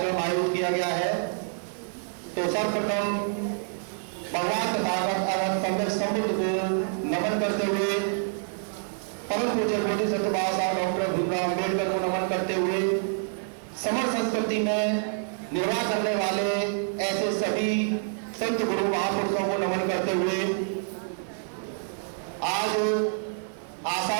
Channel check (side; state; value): left; silent; digital silence